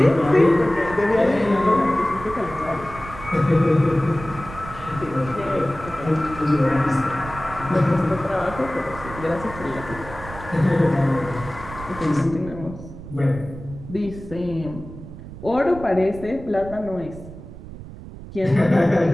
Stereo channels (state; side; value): noise; right; rumble, 14 dB below the sound